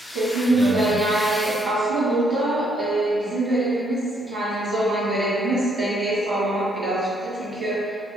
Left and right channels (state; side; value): normal; both; correlation 0.70